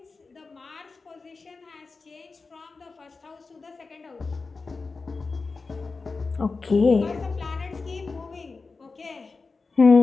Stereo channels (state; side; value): quieter; right; 4.2 dB